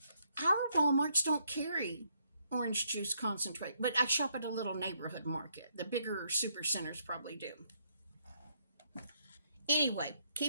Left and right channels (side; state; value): both; inverted; correlation -0.73